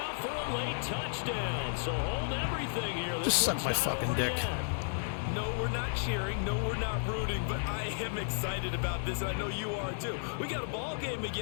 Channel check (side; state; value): right; silent; digital silence